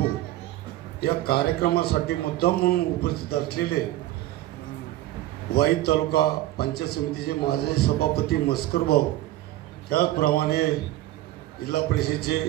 या कार्यक्रमासाठी मुद्दाम म्हणून उपस्थित असलेले वाई तालुका पंचायत समितीचे माजी सभापती मस्कर भाऊ, त्याचप्रमाणे जिल्हा परिषदेचे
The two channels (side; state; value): left; quieter; 15.5 dB